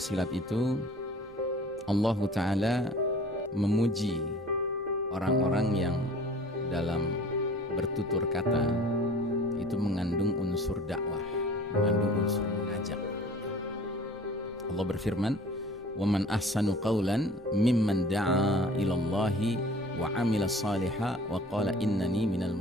itu Allah Ta'ala memuji orang-orang yang dalam bertutur kata itu mengandung unsur dakwah, mengandung unsur mengajak. Allah berfirman, "Wa man ahsanu qawlan mimman da'a ilallahi wa 'amila shalihan wa qala innani minal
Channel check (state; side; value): normal; both; correlation 0.47